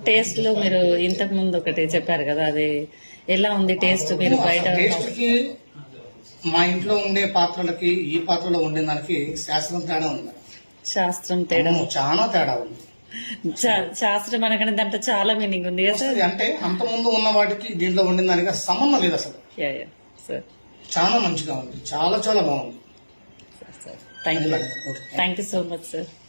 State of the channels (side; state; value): both; inverted; correlation -1.00